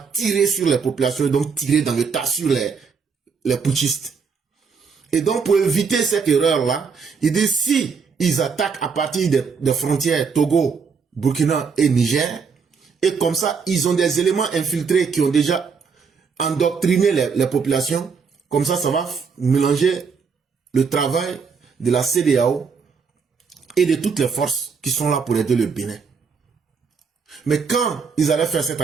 tirer sur les populations et donc tirer dans le tas sur les putschistes. Et donc, pour éviter cette erreur-là, il dit si ils attaquent à partir des frontières Togo, Burkina et Niger, et comme ça, ils ont des éléments infiltrés qui ont déjà endoctriné les populations, comme ça, ça va mélanger le travail de la CEDEAO et de toutes les forces qui sont là pour aider le Bénin. Mais quand ils allaient faire cette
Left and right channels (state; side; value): quieter; left; 5.7 dB